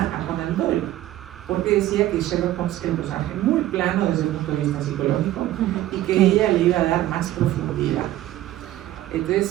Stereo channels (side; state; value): left; quieter; 14.3 dB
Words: a Conan Doyle, porque decía que Sherlock Holmes era un personaje muy plano desde el punto de vista psicológico y que ella le iba a dar más profundidad. Entonces